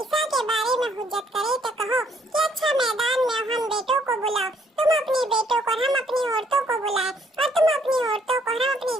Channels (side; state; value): both; normal; correlation 0.67